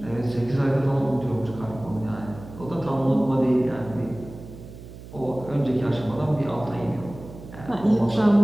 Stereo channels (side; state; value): right; noise; hum, 15 dB below the sound